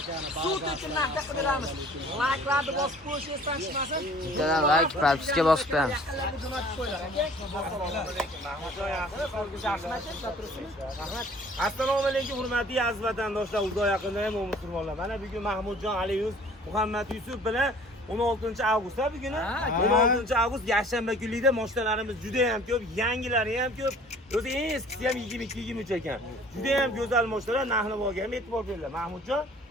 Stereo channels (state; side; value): normal; both; correlation 0.51